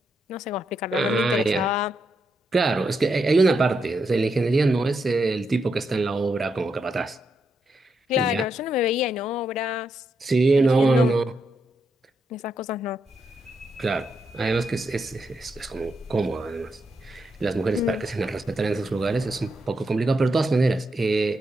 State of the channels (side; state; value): both; normal; correlation 0.82